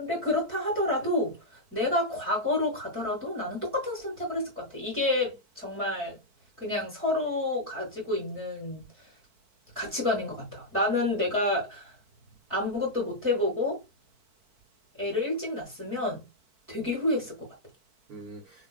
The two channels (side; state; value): left; late; 4.5 ms